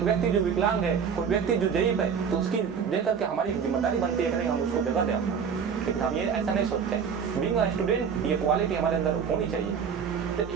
व्यक्ति जो विकलांग है, कोई व्यक्ति जो जयीफ है, तो उसकी देख करके हमारी जिम्मेदारी बनती है कि नहीं हम उसको जगह दें। लेकिन हम ये ऐसा नहीं सोचते हैं। बीइंग अ स्टूडेंट ये क्वालिटी हमारे अंदर होनी चाहिए। तो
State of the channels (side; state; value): left; quieter; 6.8 dB